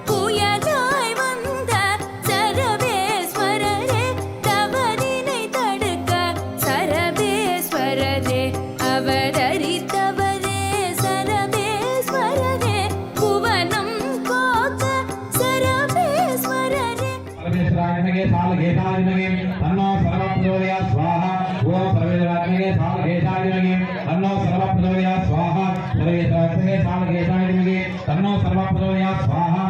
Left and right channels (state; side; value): identical; both; correlation 1.00